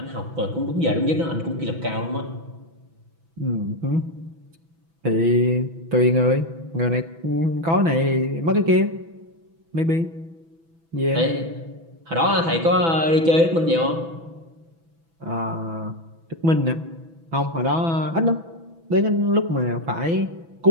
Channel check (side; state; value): left; late; 6.1 ms